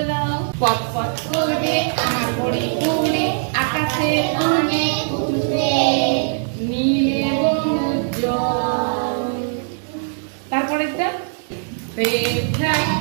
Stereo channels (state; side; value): silent; left; digital silence